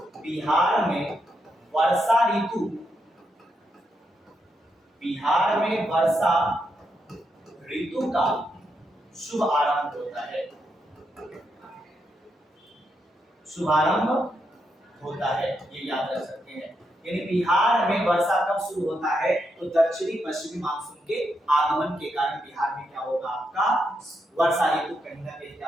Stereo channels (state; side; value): normal; both; correlation 0.82